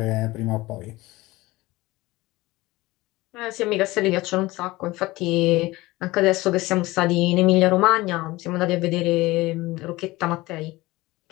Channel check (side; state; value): right; quieter; 19.8 dB